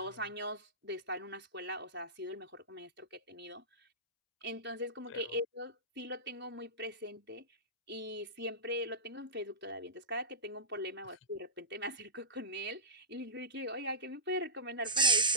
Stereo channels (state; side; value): normal; both; correlation -0.15